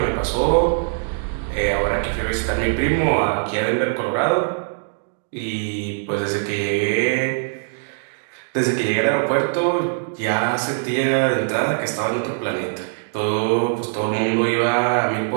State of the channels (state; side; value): silent; left; digital silence